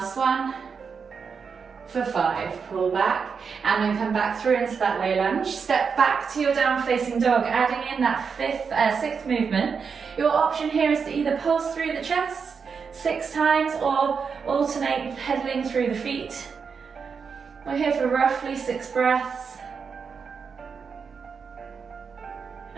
one, for 5. Pull back and then come back through into that low lunge. Step back to your down facing dog, adding in that 6th movement. Your option here is to either pulse through the chest 6 times or alternate pedaling through the feet. We're here for roughly 6 breaths.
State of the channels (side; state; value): left; quieter; 5.9 dB